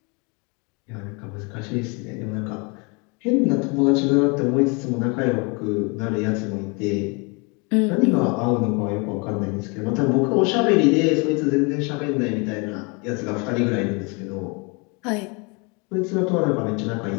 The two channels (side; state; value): right; quieter; 31.1 dB